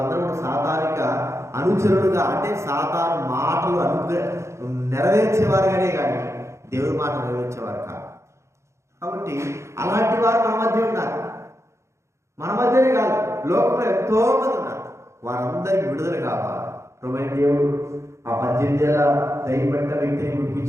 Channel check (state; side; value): late; left; 0.14 ms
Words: కూడా సాతానిక అనుచరులుగా, అంటే సాతాను మాటలు నెరవేర్చేవారుగానే కానీ దేవుడి మాట నెరవేర్చేవారు కాదు. కాబట్టి అలాంటి వారు మన మధ్య ఉన్నారు. మన మధ్యనే కాదు, లోకంలో ఎంతో మంది ఉన్నారు. వారందరికీ విడుదల కావాలి. ప్రభువైన దేవుడు ఆ 18 ఏళ్ల దయ్యం పట్టిన వ్యక్తిని